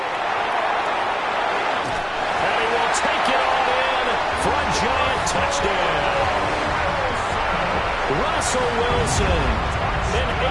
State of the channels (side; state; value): both; identical; correlation 1.00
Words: And he will take it all in for a Giant touchdown. Russell Wilson. An